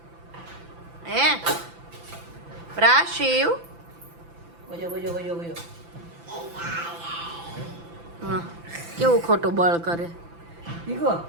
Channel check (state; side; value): late; left; 5.9 ms